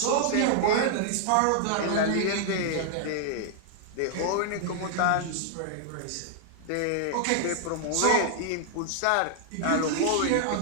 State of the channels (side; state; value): both; different; correlation -0.01